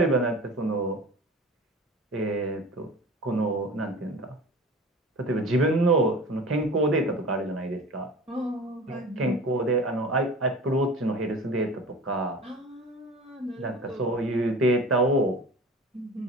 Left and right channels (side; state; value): both; normal; correlation 0.37